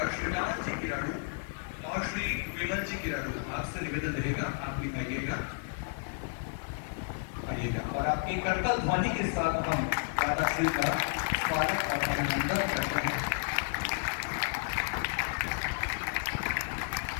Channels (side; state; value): right; silent; digital silence